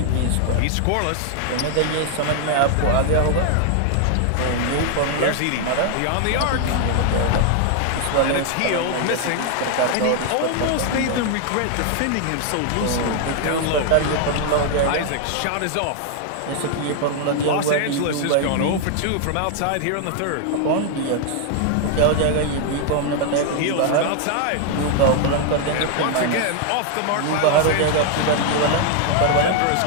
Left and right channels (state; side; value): different; both; correlation 0.00